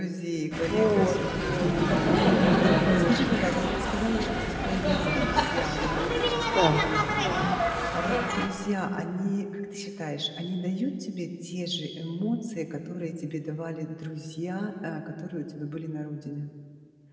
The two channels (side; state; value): both; identical; correlation 1.00